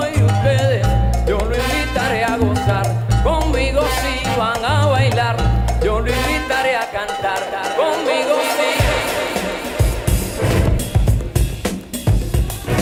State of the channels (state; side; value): identical; both; correlation 1.00